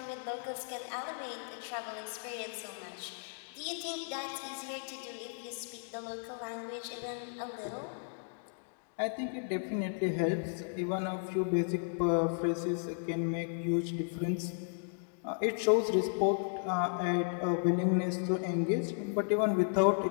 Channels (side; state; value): right; silent; digital silence